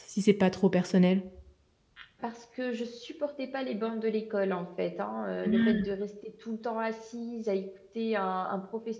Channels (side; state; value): both; identical; correlation 1.00